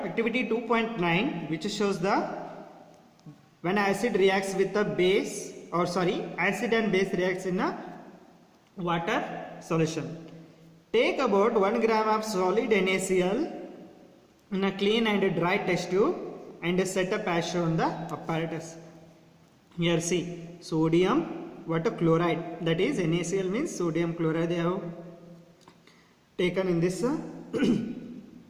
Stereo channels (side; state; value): both; identical; correlation 1.00